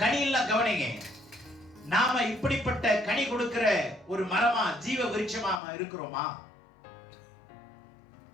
கனியெல்லாம் கவனிங்க. நாம இப்படிப்பட்ட கனி கொடுக்கிற ஒரு மரமா, ஜீவ விருட்சமா இருக்கிறோமா?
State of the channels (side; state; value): right; drops out; at 5.6 s